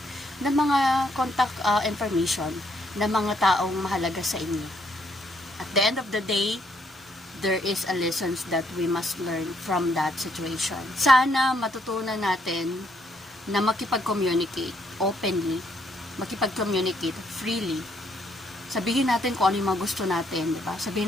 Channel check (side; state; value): both; normal; correlation 0.71